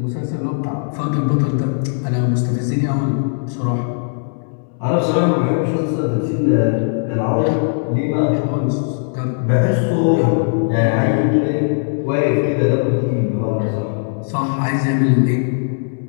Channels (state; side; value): silent; right; digital silence